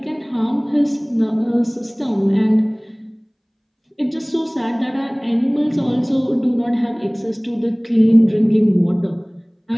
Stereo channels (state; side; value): identical; both; correlation 1.00